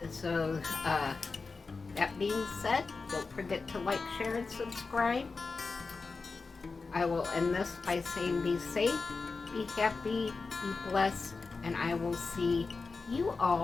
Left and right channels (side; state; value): right; quieter; 4.2 dB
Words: So, that being said, don't forget to like, share, and subscribe. I will end this by saying be safe, be happy, be blessed, and I will see you